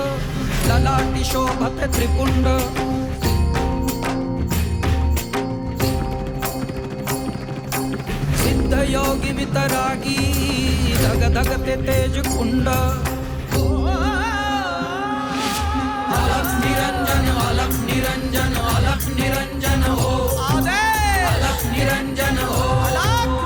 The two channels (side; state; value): both; identical; correlation 1.00